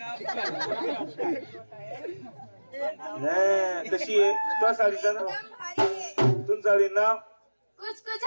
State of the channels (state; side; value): inverted; both; correlation -1.00